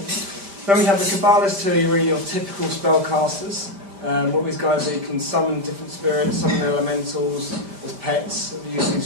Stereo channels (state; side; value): late; left; 5.1 ms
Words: Then we have the Kabbalists, who are really your typical spellcasters. What these guys do, you can summon different spirits, summon elementals as pets, and use